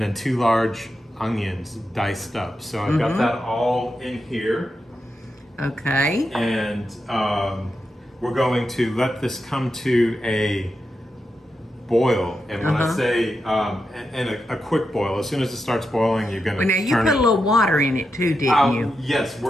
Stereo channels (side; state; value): both; normal; correlation 0.87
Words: then 2 large onions diced up. So I've got that all in here. Okay. And we're going to let this come to a boil, and when I say and a quick boil, as soon as it starts boiling, you're going to now you put a little water in it too, didn't you? Yes,